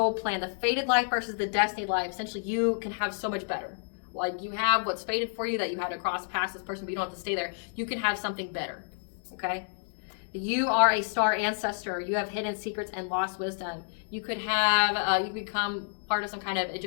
plan, the fated life versus the destiny life. Essentially, you can have so much better. Like you have what's fated for you, that you had to cross past this person, but you don't have to stay there. You can have something better, okay? You are a star ancestor. You have hidden secrets and lost wisdom. You could have, you could become part of some kind of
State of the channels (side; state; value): right; silent; 58 dB below the other